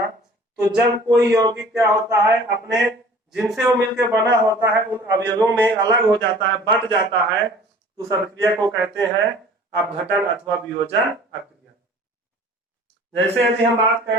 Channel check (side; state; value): both; normal; correlation 0.48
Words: तो जब कोई यौगिक क्या होता है, अपने जिनसे वो मिलकर बना होता है उन अवयवों में अलग हो जाता है, बट जाता है, तो उस अभिक्रिया को कहते हैं अपघटन अथवा वियोजन अभिक्रिया। जैसे यदि हम बात